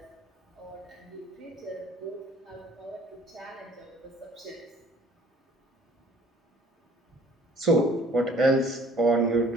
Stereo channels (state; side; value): normal; both; correlation 0.54